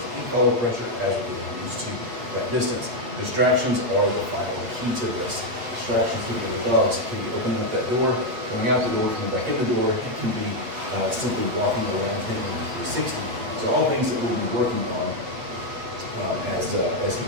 e-collar pressure as we get used to that distance. Distractions are the final key to this. Distractions to the dogs can be opening up that door, coming out the door, coming back in the door. It can be simply walking around him in 360. So all things that we'll be working on as he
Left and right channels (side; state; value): left; late; 8.6 ms